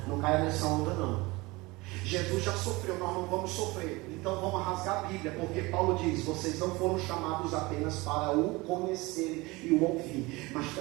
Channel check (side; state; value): left; quieter; 22.9 dB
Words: Não caia nessa onda não. Jesus já sofreu, nós não vamos sofrer. Então vamos rasgar a Bíblia, porque Paulo diz: vocês não foram chamados apenas para o conhecer e o ouvir, mas